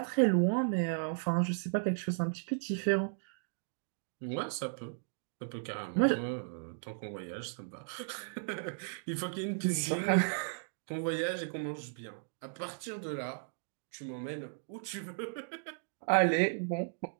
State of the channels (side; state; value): left; silent; digital silence